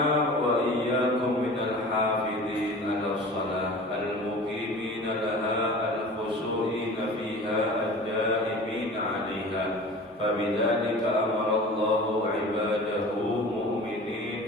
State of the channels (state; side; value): normal; both; correlation 0.39